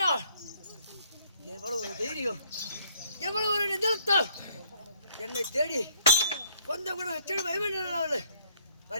எவ்வளவு ஒரு தைரியம், எவ்வளவு ஒரு நிதர்த்தம். என்னை தேடி கொஞ்சம் கூட செடு பயமேன்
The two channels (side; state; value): both; inverted; correlation -0.61